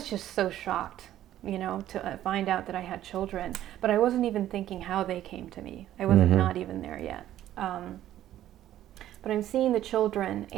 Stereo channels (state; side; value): quieter; left; 12.7 dB